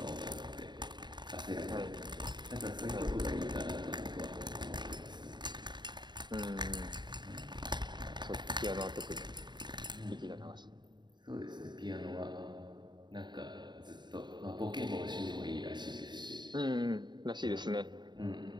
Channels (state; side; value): late; left; 0.21 ms